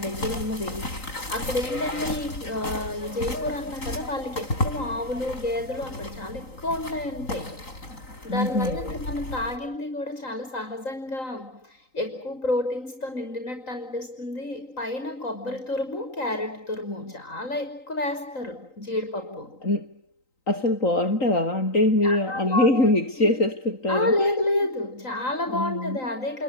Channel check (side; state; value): right; late; 3.9 ms